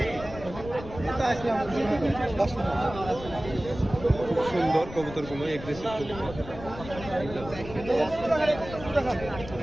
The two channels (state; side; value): noise; left; rumble, 13 dB below the sound